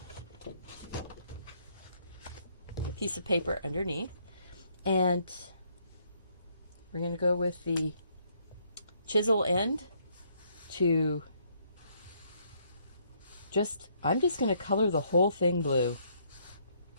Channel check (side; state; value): both; inverted; correlation -0.69